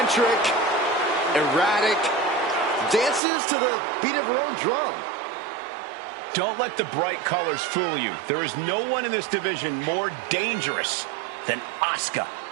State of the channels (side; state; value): left; drops out; at 3.2 s